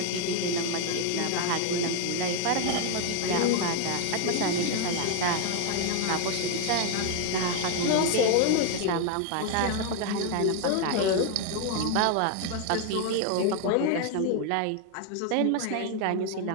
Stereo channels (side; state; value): both; different; correlation 0.01